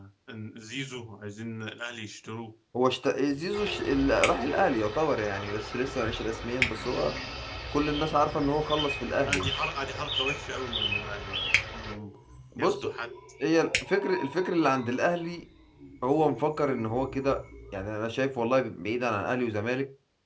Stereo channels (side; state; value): both; identical; correlation 1.00